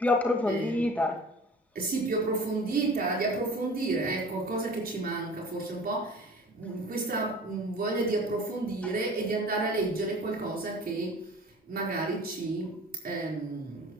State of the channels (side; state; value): both; normal; correlation 0.42